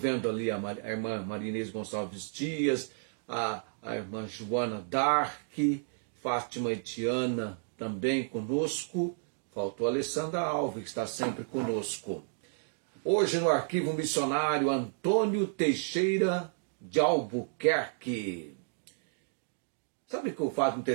ali a irmã Marinês Gonçalves Dias, a irmã Joana Dark, Fátima Etiana também conosco. Faltou a Alessandra Alves, que está sempre conosco. Hoje no Arquivo Missionário Antônio Teixeira de Albuquerque. Sabe que o fato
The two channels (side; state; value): left; silent; digital silence